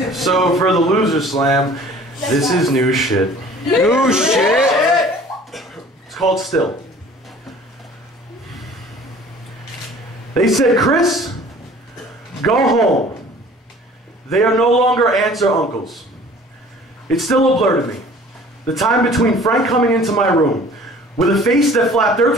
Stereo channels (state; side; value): normal; both; correlation 0.49